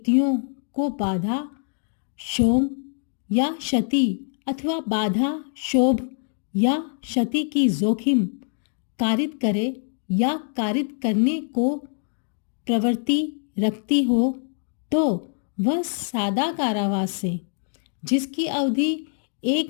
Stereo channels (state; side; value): silent; right; 55 dB below the other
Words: को बाधा शोम या क्षति अथवा बाधा, शोभ या क्षति की जोखिम कारित करे या कारित करने को प्रवृत्ति रखती हो तो वह सादा कारावास से, जिसकी अवधि